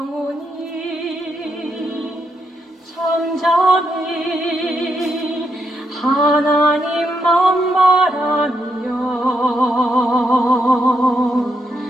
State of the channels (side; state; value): both; normal; correlation 0.80